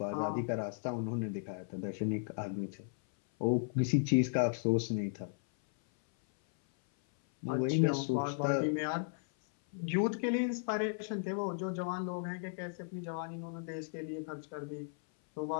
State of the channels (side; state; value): right; silent; 54 dB below the other